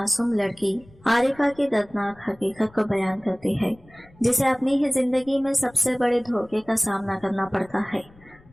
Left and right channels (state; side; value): noise; left; rumble, 26 dB below the sound